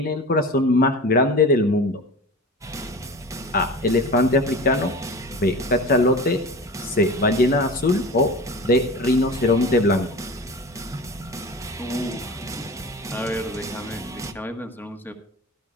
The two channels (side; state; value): both; normal; correlation 0.33